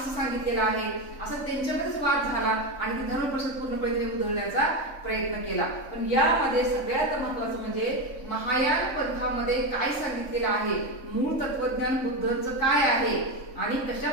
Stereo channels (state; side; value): late; right; 3.5 ms